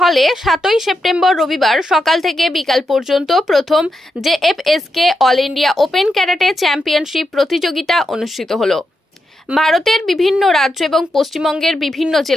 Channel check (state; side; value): normal; both; correlation 0.85